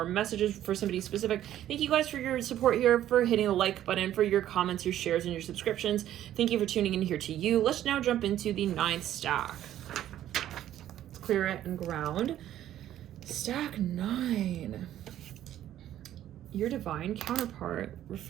messages for somebody specific. Thank you guys for your support here, for hitting the like button, for your comments, your shares, and your subscriptions. Thank you for tuning in here to you. Let's now jump into the 9th stack. Let's clear it and ground. Stack 9. Your divine counterpart. We're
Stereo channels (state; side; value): quieter; left; 12.1 dB